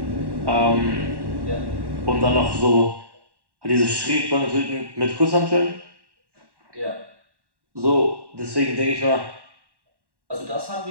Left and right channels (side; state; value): left; late; 1.1 ms